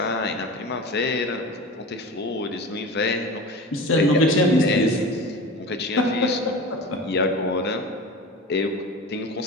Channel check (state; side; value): normal; both; correlation 0.33